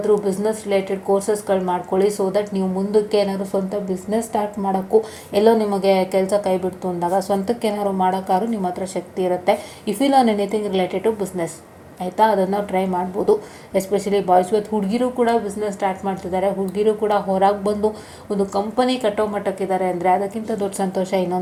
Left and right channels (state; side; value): identical; both; correlation 1.00